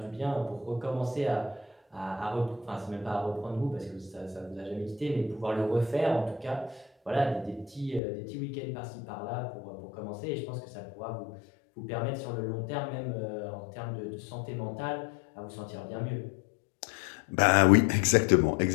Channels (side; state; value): right; drops out; at 8.0 s